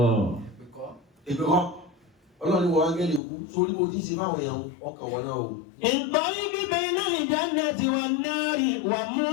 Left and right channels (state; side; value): drops out; right; at 3.2 s